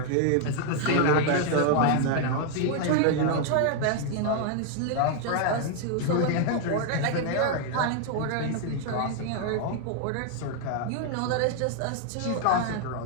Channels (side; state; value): both; different; correlation 0.00